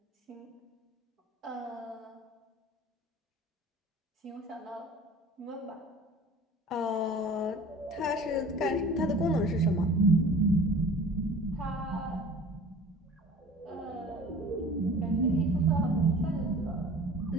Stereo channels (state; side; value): normal; both; correlation 0.44